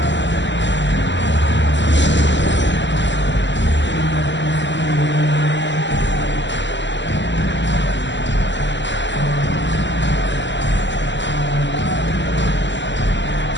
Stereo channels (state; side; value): late; right; 0.53 ms